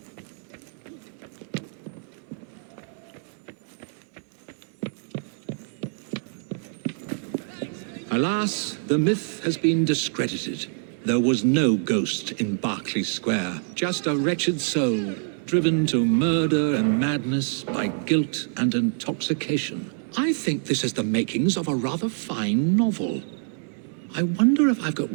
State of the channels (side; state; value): left; silent; 61 dB below the other